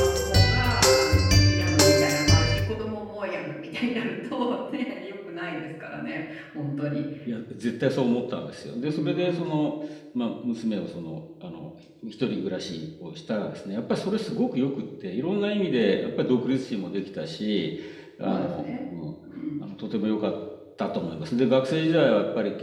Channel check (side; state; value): both; identical; correlation 1.00